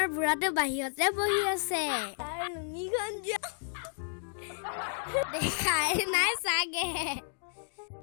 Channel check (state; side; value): silent; right; digital silence